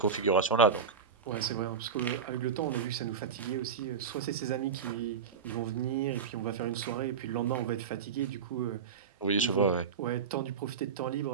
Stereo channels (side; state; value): left; quieter; 6.3 dB